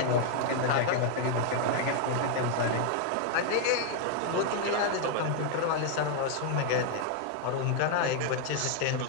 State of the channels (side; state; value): both; different; correlation 0.00